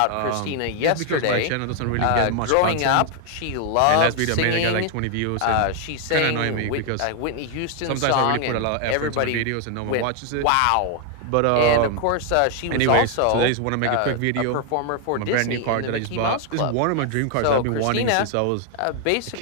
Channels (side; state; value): both; different; correlation 0.00